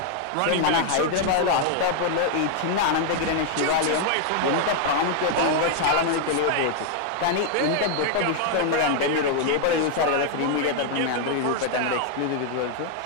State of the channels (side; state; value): both; different; correlation 0.00